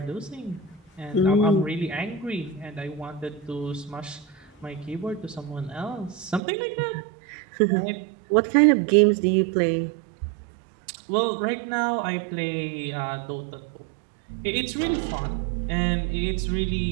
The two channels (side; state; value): left; drops out; at 6.4 s